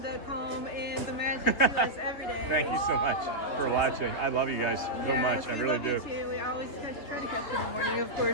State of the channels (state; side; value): late; right; 3.4 ms